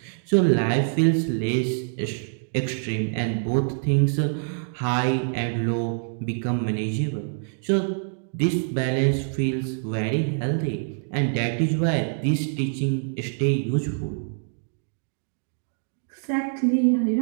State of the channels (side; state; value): left; silent; digital silence